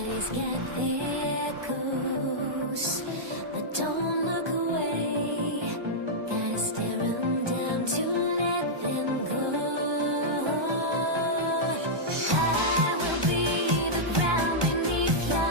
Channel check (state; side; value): late; left; 1.2 ms